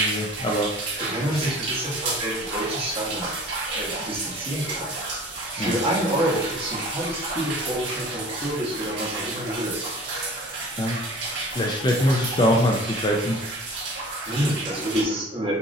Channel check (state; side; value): normal; both; correlation 0.44